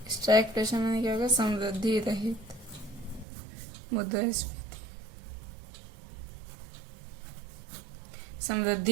स्टैगफ्लेशन मैंने क्या होगा? समृद्धि रहित मुद्रास्फीति,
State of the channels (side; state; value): left; drops out; at 3.2 s